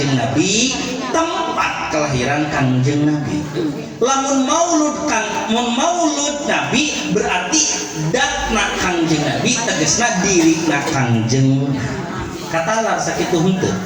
Nabi, tempat kelahiran Kangjeng Nabi. Lamun maulud Nabi berarti datna Kangjeng Nabi tegesna dirina Kangjeng katalar sakitu henteu.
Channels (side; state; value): both; identical; correlation 1.00